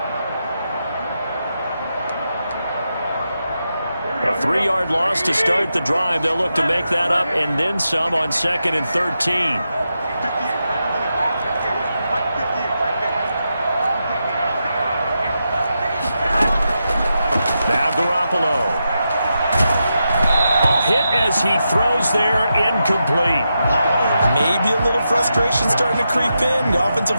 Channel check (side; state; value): both; inverted; correlation -0.87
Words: A 3-yard loss to start the drive. They'll look to make that up and then some on 2nd and 13. Now Garoppolo. A hit as he throws there, incomplete. Maybe a little frustration starting to creep in. The offensive